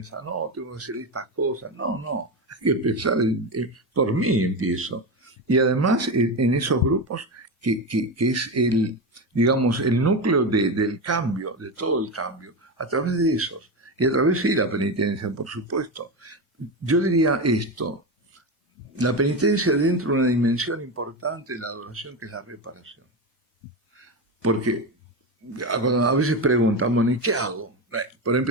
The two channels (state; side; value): normal; both; correlation 0.17